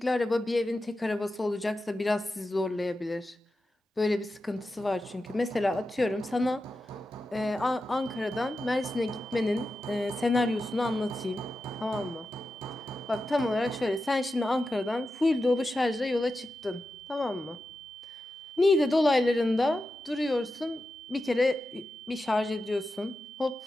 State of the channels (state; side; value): normal; both; correlation 0.91